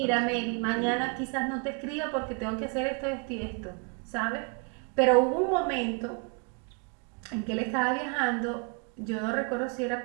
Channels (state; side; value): quieter; left; 35.7 dB